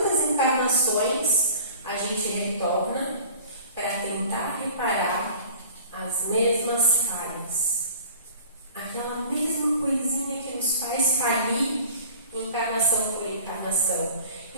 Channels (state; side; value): inverted; both; correlation -0.45